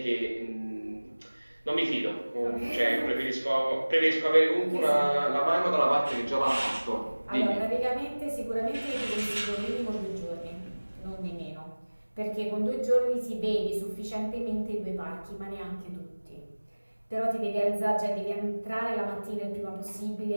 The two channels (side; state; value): both; inverted; correlation -1.00